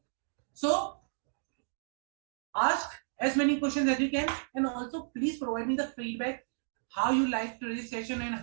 So ask as many questions as you can, and also please provide me the feedback how you liked today's session and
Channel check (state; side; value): silent; left; digital silence